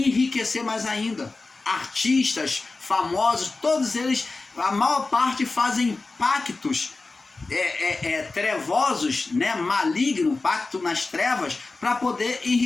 enriquecer mais ainda. Artistas famosos, todos eles, a maior parte fazem pactos trevosos, né, maligno, pacto nas trevas, para poder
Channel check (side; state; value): right; quieter; 3.6 dB